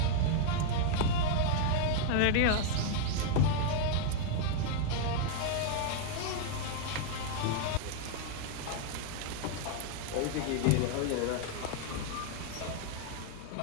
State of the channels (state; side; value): different; both; correlation -0.01